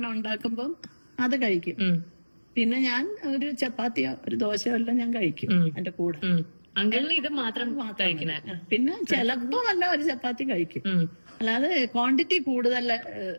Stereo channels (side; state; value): both; inverted; correlation -1.00